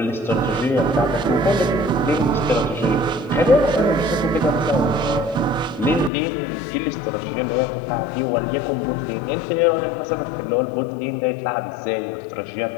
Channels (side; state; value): right; drops out; at 6.1 s